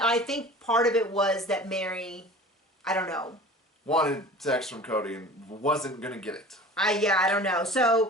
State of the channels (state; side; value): normal; both; correlation 0.41